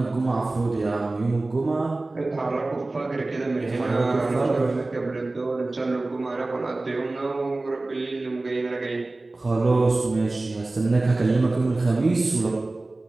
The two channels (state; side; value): quieter; left; 3.1 dB